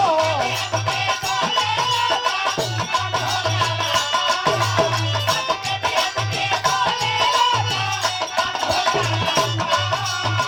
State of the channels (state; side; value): identical; both; correlation 1.00